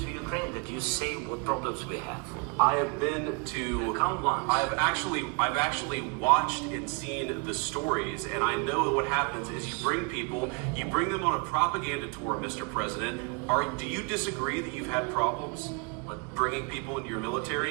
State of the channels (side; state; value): left; quieter; 32.3 dB